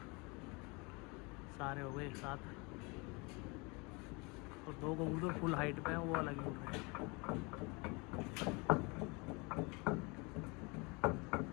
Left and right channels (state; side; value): quieter; right; 28.5 dB